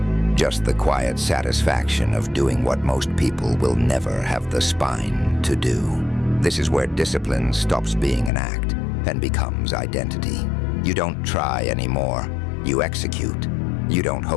just the quiet satisfaction of doing what most people will never have the spine to do. This is where discipline stops being an act and becomes identity. You don't try anymore, you execute. You don't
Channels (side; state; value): right; drops out; at 8.3 s